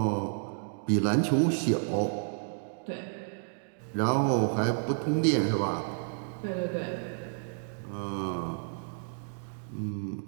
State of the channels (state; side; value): silent; left; digital silence